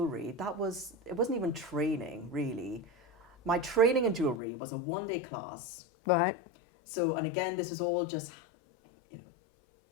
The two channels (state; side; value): drops out; right; at 4.4 s